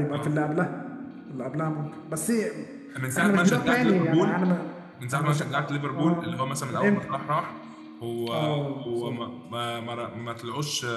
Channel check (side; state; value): both; identical; correlation 1.00